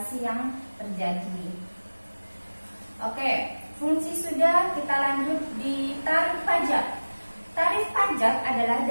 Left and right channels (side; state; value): both; inverted; correlation -1.00